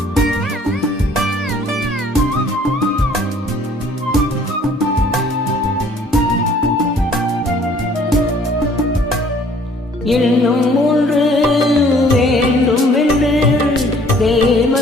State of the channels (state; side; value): normal; both; correlation 0.57